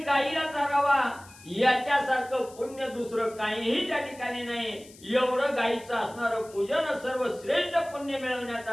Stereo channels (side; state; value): left; noise; hiss, 22 dB below the sound